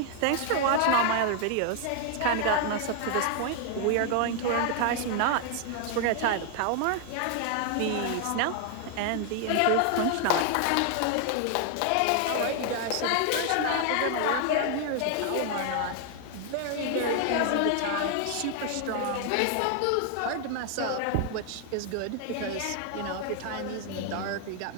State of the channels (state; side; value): different; both; correlation 0.00